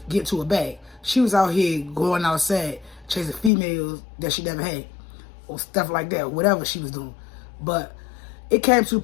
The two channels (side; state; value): right; drops out; at 3.5 s